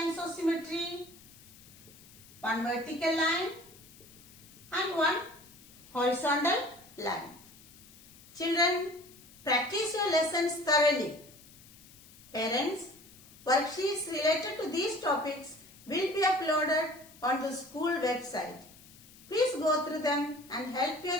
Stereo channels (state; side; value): noise; left; hiss, 22 dB below the sound